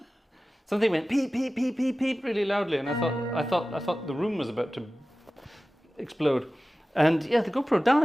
Something went peep peep peep peep peep really loudly, and I thought the room was about to explode. And yeah, the GoPro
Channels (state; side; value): normal; both; correlation 0.96